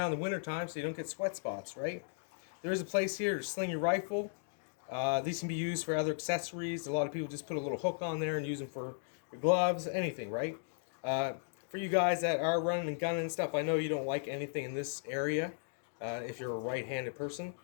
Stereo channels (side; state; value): right; silent; digital silence